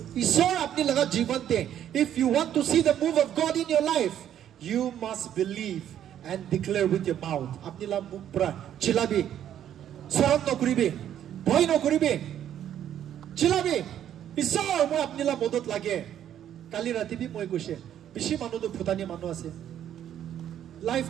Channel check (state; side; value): quieter; left; 10.4 dB